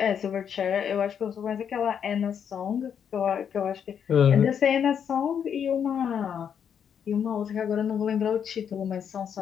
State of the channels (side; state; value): right; quieter; 8.0 dB